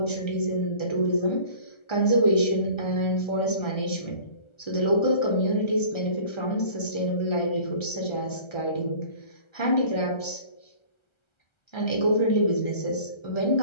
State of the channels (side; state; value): right; late; 1.3 ms